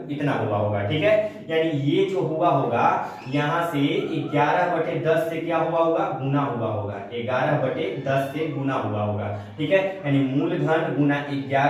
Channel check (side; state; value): both; identical; correlation 1.00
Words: इतना हुआ होगा, ठीक है। यानी ये जो हुआ होगा यहाँ से 11/10 से क्या हुआ होगा, गुना हुआ होगा, 11/10 से गुना हुआ होगा, ठीक है। यानी मूलधन गुना